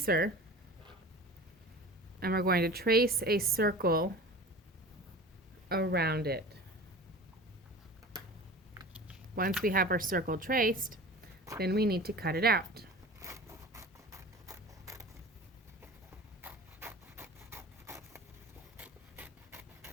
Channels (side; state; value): both; normal; correlation 0.37